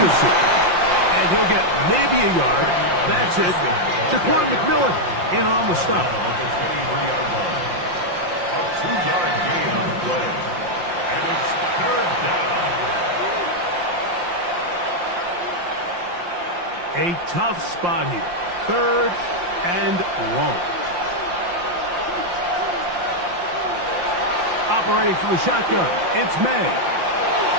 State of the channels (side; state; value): left; late; 5.7 ms